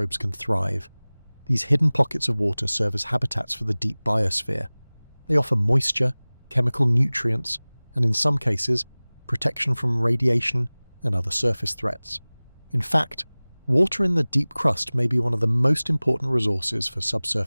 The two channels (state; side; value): inverted; both; correlation -1.00